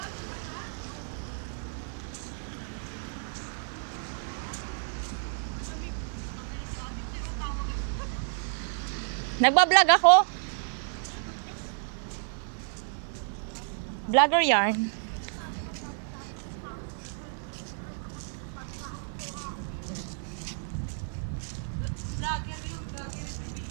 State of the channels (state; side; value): silent; left; digital silence